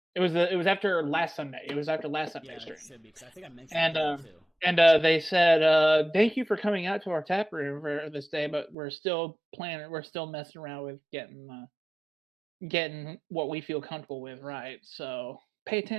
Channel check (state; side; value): drops out; left; at 8.8 s